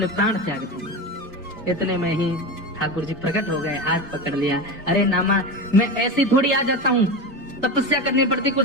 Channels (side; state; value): both; normal; correlation 0.23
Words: प्राण त्याग दूंगा। इतने में ही ठाकुर जी प्रकट हो गए, हाथ पकड़ लिया। अरे नामा, मैं ऐसे थोड़ी आ जाता हूँ, तपस्या करनी पड़ती, कुछ